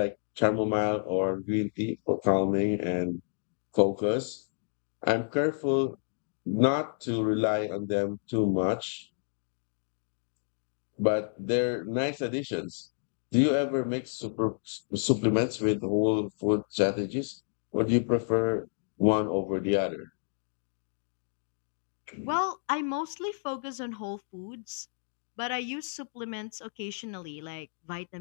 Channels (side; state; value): right; silent; digital silence